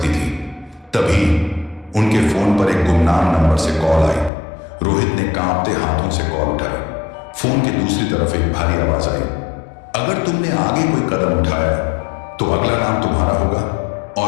थी। तभी उनके फोन पर एक गुमनाम नंबर से कॉल आई। रोहित ने कांपते हाथों से कॉल उठाया। फोन की दूसरी तरफ एक भारी आवाज आई, अगर तुमने आगे कोई कदम उठाया तो अगला नाम तुम्हारा होगा।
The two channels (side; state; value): right; drops out; at 4.3 s